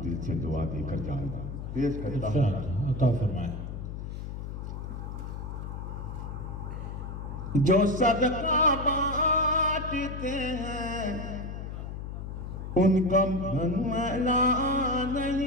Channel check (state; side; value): noise; left; hum, 7 dB below the sound